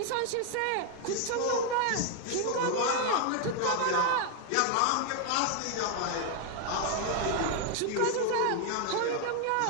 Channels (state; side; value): different; both; correlation 0.00